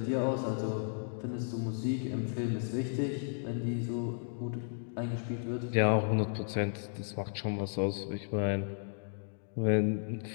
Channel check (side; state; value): right; silent; digital silence